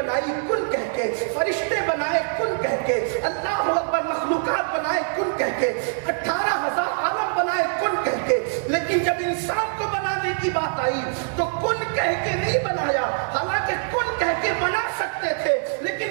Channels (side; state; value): left; silent; digital silence